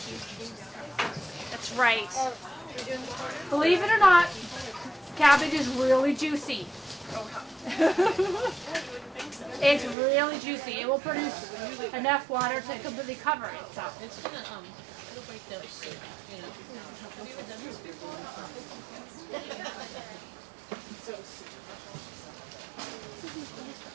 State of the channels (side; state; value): left; drops out; at 10.0 s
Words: That's right. Believe it or not, cabbage is really juicy. It's really juicy. It will produce enough water to completely cover it. So. It's gonna it'll break down soup, you know. Have you ever done this before?